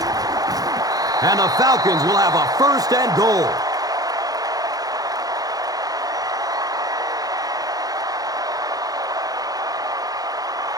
And the Falcons will have a first and goal.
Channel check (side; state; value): left; late; 0.18 ms